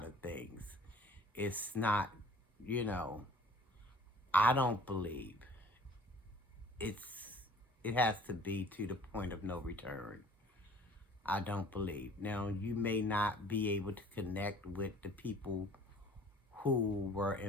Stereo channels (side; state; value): both; normal; correlation 0.51